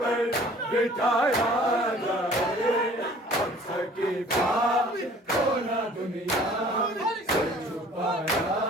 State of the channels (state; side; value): normal; both; correlation 0.51